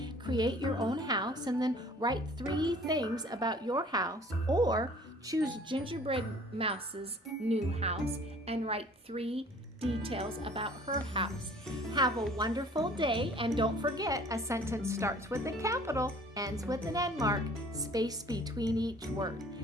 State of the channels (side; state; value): both; normal; correlation 0.52